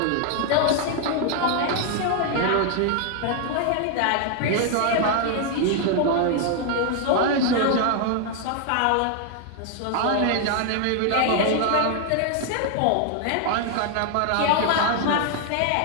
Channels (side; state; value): both; different; correlation 0.00